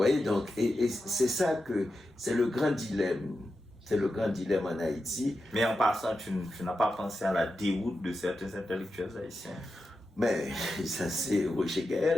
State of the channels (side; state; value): both; normal; correlation 0.89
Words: Donc, et c'est ça que c'est le grand dilemme. C'est le grand dilemme en Haïti. Mais en passant, tu n'as pas pensé à la déroute de certains intellectuels haïtiens? Mais ça, c'est Roger Gaël,